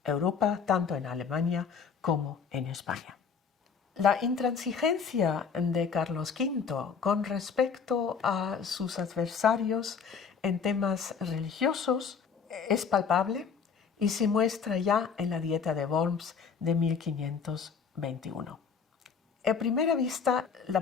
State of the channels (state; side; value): quieter; right; 6.3 dB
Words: Europa, tanto en Alemania como en España. La intransigencia de Carlos V con respecto a sus adversarios en temas religiosos es palpable y se muestra ya en la Dieta de Worms de 1521. A primera vista,